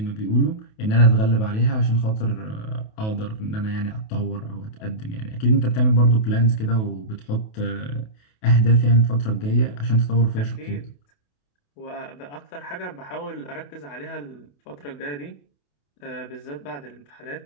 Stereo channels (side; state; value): right; late; 28 ms